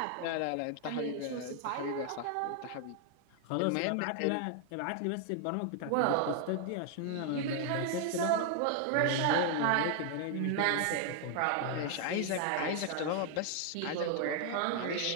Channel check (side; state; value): both; different; correlation 0.00